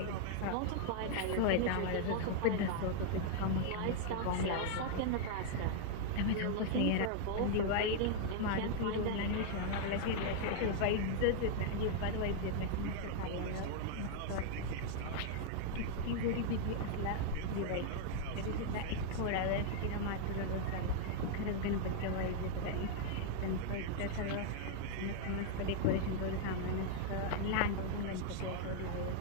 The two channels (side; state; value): both; different; correlation 0.00